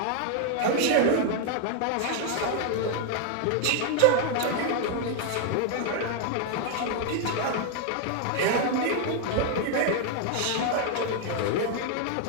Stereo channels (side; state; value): both; different; correlation 0.00